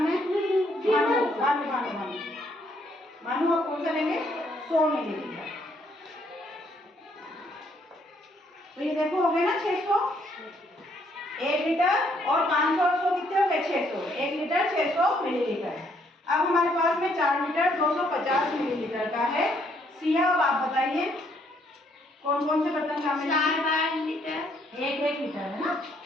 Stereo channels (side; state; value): both; normal; correlation 0.69